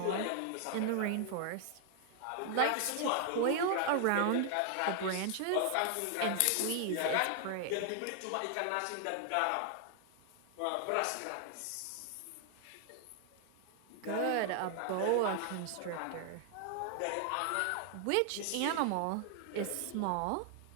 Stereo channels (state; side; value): different; both; correlation 0.00